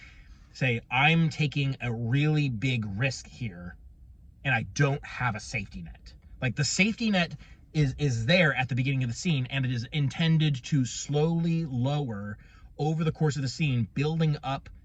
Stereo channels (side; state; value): both; identical; correlation 1.00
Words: say, I'm taking a really big risk here and I don't have a safety net. Like the safety net is there at the beginning of the scene, and it is intended to slowly lower over the course of the scene, building up